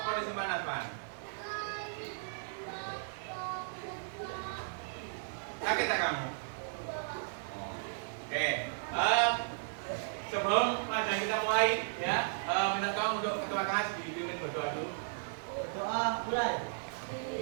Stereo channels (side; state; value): left; silent; digital silence